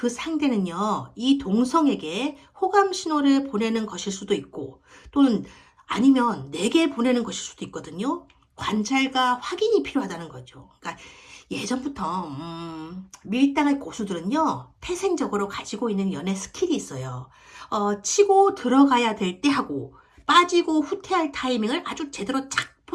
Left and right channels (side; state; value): both; identical; correlation 1.00